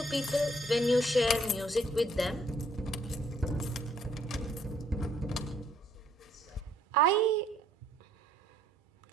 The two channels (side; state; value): both; normal; correlation 0.65